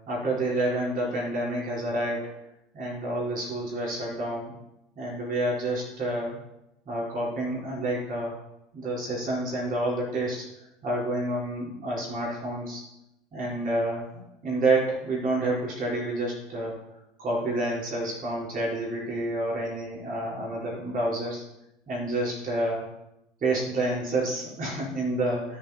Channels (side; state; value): both; normal; correlation 0.55